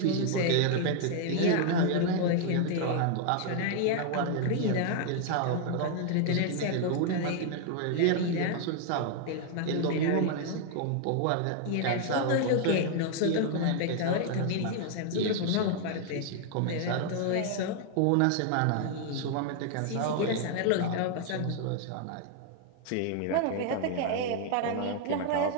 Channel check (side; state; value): both; different; correlation 0.00